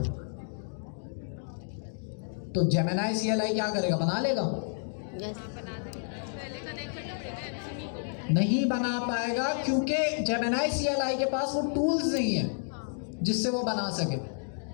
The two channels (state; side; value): silent; right; digital silence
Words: तो जेमिनी CLI क्या करेगा, बना लेगा? नहीं बना पाएगा, क्योंकि जेमिनी CLI के पास वो टूल्स नहीं है जिससे वो बना सके।